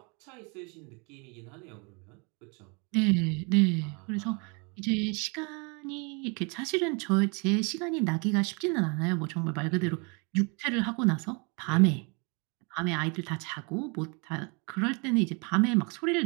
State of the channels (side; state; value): left; quieter; 32.6 dB